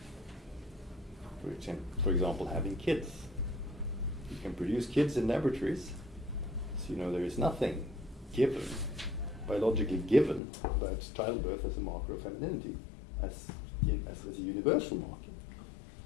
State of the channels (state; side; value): drops out; right; at 10.4 s